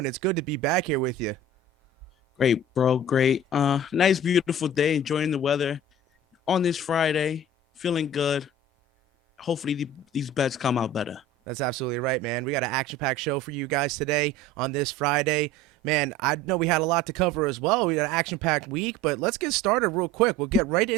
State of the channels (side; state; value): both; normal; correlation 0.40